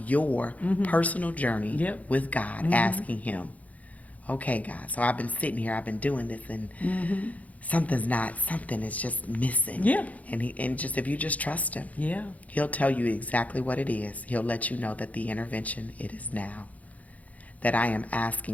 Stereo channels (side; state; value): right; late; 0.072 ms